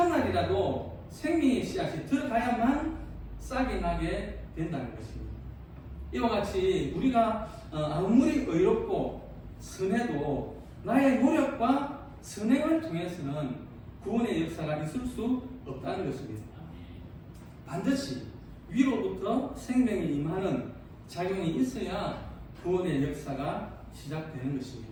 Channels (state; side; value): identical; both; correlation 1.00